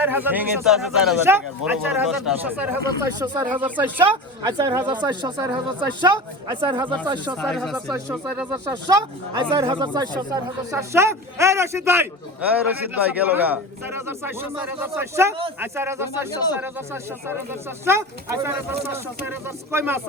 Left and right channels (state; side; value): normal; both; correlation 0.30